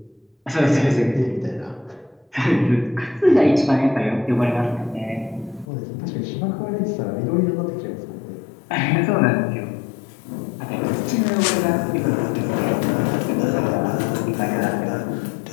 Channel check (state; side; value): drops out; right; at 5.7 s